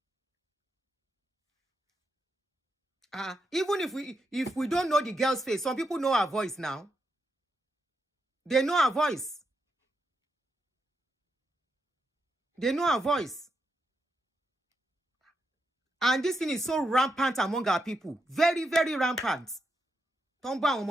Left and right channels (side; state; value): both; normal; correlation 0.83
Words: Even if we don't know the girl's face, some people know her voice now. They know her voice. They know her voice. And this thing is so rampant among our people. Very, very rampant. Ton bá àwọn